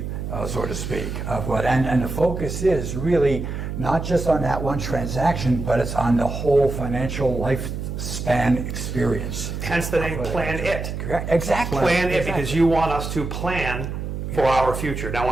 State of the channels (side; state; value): right; noise; hum, 5 dB below the sound